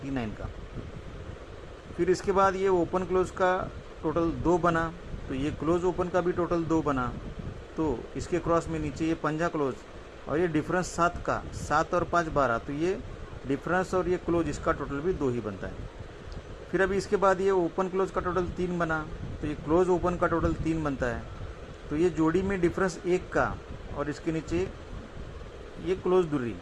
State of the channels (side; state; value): both; identical; correlation 1.00